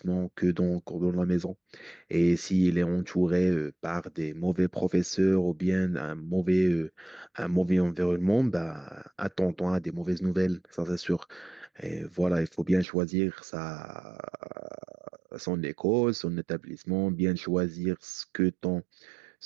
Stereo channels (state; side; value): drops out; left; at 12.9 s